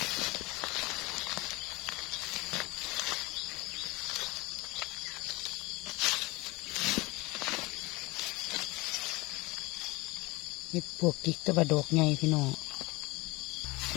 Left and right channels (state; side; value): quieter; right; 23.4 dB